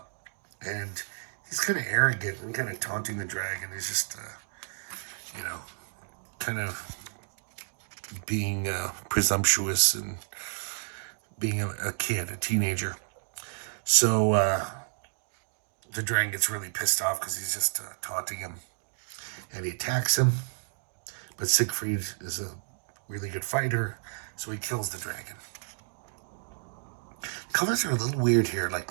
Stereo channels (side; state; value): left; silent; digital silence